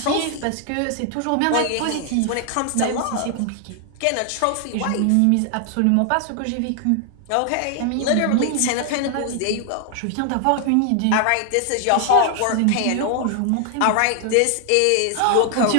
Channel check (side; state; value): both; different; correlation 0.00